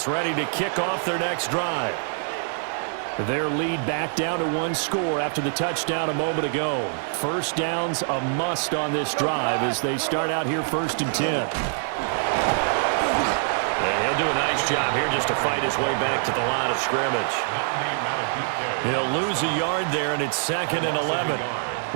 ready to kick off their next drive. Their lead back down to 1 score after the touchdown a moment ago. 1st down's a must on this drive as they start out here 1st and 10. He'll do a nice job here just to fight his way back to the line of scrimmage. He'll lose a yard there, and it's 2nd and 11.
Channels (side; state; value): left; silent; digital silence